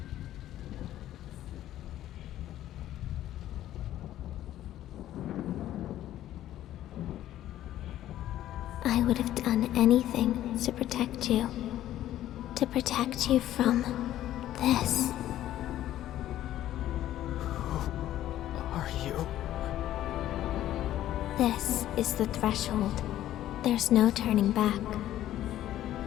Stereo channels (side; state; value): right; quieter; 13.0 dB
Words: I would have done anything to protect you. To protect you from this. Who are you? This is the threshold. There's no turning back.